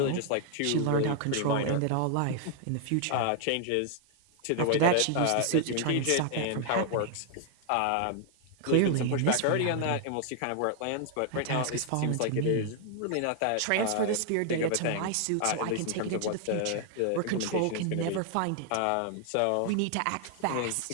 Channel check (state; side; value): different; both; correlation 0.00